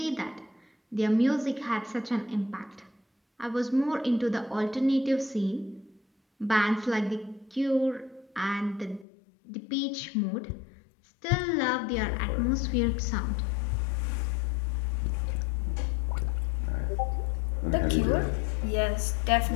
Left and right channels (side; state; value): right; drops out; at 9.1 s